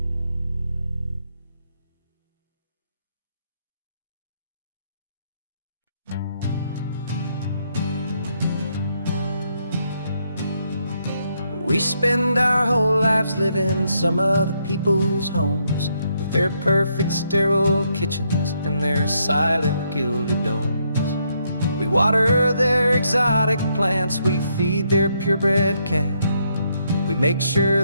We spend our whole lives living some other people's homes, with their perfect sterile kitchens and their silent gilded domes. We water their exotic plants, we feed their purebred cat. We make sure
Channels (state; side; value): inverted; both; correlation -0.76